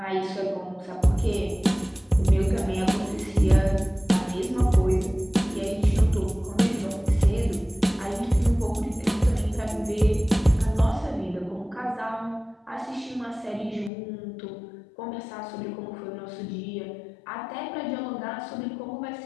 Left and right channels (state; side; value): drops out; right; at 13.9 s